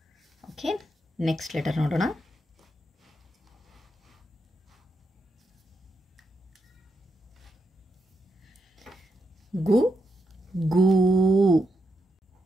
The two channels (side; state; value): both; normal; correlation 0.83